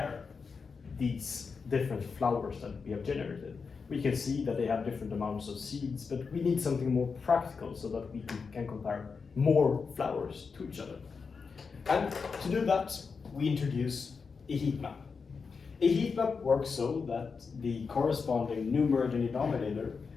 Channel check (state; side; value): quieter; right; 5.2 dB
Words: these different flowers that we have generated? We can see that they have different amounts of seeds, but we need something more practical so that we can compare more flowers to each other. And to do that, we introduce a heat map. A heat map works so that the corresponding numerator and denominator